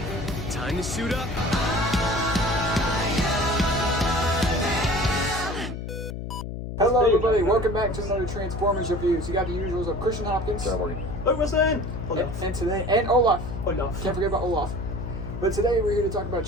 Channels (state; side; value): noise; left; hum, 7 dB below the sound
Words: Time to suit up. Hello everybody, welcome back to another Transformers reviews. You got the usuals of Christian Hopkins. Logan. And today, and Olaf. Can't forget about Olaf. But today we're here to talk about